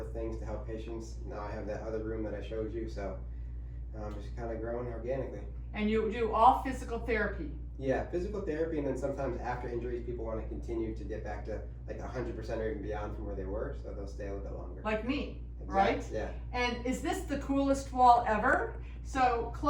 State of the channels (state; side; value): identical; both; correlation 1.00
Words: things to help patients. Now I have that other room that I showed you, so just kind of growing organically. And you do all physical therapy? Yeah, physical therapy, and then sometimes after injuries, people want to continue to get back to like 100% or even beyond from where they were, so they'll stay a little bit longer. Like me, exactly. Right? Yeah. And is this the coolest wall ever? So